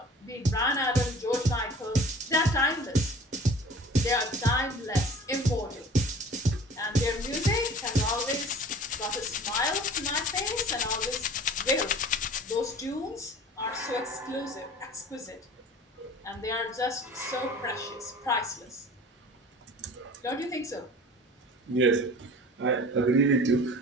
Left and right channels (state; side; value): normal; both; correlation 0.44